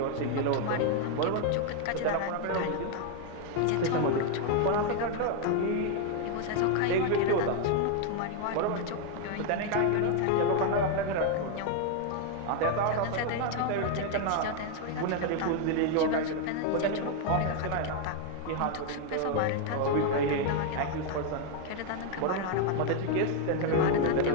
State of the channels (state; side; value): different; both; correlation 0.01